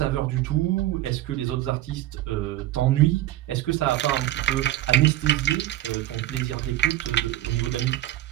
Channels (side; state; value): left; quieter; 14.5 dB